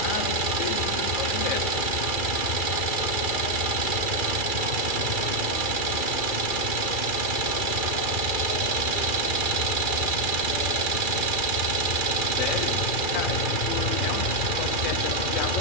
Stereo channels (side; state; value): right; late; 2.4 ms